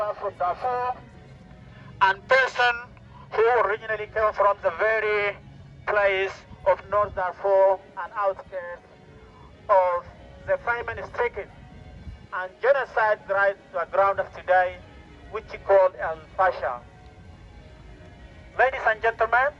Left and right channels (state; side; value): identical; both; correlation 1.00